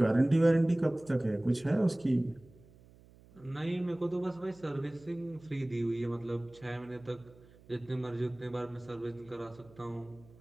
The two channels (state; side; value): noise; right; hum, 25 dB below the sound